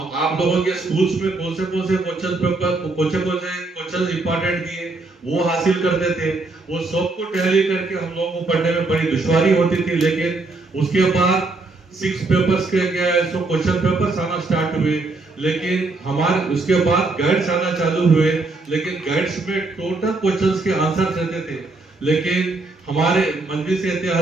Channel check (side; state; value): left; quieter; 3.4 dB